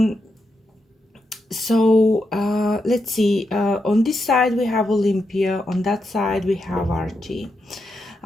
So let's see, on this side we have Olympia, on that side we have Archie.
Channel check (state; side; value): normal; both; correlation 0.85